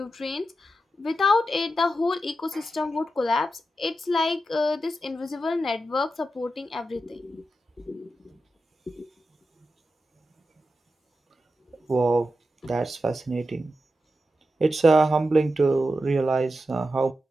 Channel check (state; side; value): normal; both; correlation 0.89